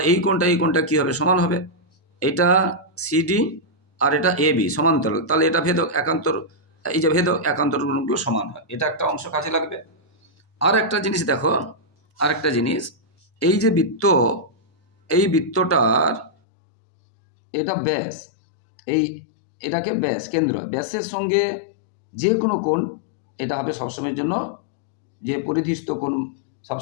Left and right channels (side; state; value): right; drops out; at 16.3 s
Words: এই কোণটা কী হবে? সমান হবে। এটা সিডি আর এটা এবি সমান্তরাল, তাহলে এটা ভেদক, একান্তর, এই যে ভেদক একান্তর গুণগুলো সমান হয়, এটা একটা অংশ কাজে লাগবে। আর একটা জিনিস দেখো, এই যে বৃত্ত, এই বৃত্তটার এটা ব্যাস, এটাকে ব্যাস, কেন্দ্র, ব্যাসের সঙ্গে যে কোনো কোণ এটা হবে সবসময়ের জন্য, যে পরিধিস্থ কোণ